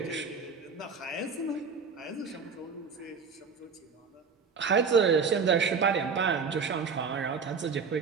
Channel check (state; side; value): quieter; left; 5.5 dB